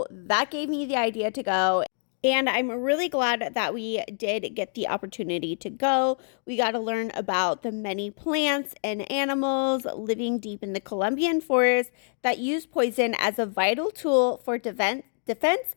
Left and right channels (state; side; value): silent; right; digital silence